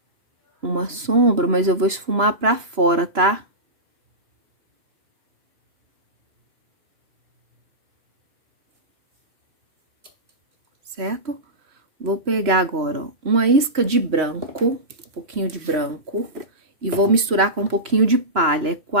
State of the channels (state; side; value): late; left; 3.1 ms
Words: uma sombra, mas eu vou esfumar pra fora, tá? Certo? Vou pegar agora, ó, uma isca de branco, um pouquinho de branco, e vou misturar com um pouquinho de palha. É